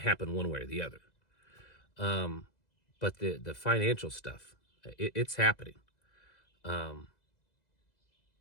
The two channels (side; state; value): right; late; 2.0 ms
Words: one way or the other. But the financial stuff, it's happening. The